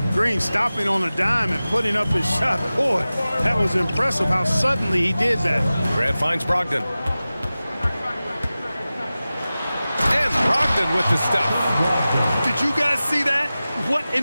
Green stopping on a dime and putting up his shot. Boy, that was impressive how suddenly he did that. Grant finds Brogdon. And Brogdon with the stuff. Did you guys see that? What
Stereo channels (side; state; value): both; inverted; correlation -0.96